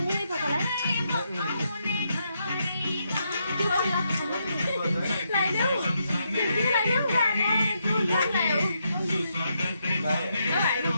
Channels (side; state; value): both; inverted; correlation -0.80